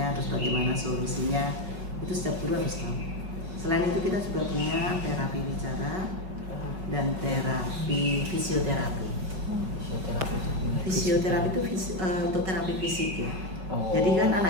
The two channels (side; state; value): left; late; 5.3 ms